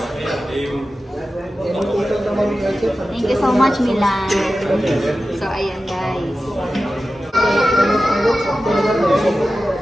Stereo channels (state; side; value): normal; both; correlation 0.94